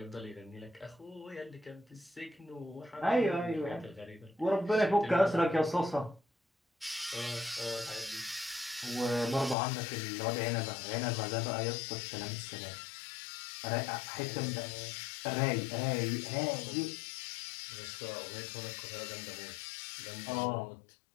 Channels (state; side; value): drops out; right; at 9.6 s